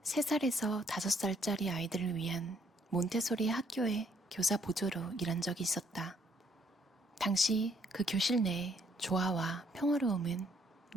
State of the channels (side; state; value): both; normal; correlation 0.67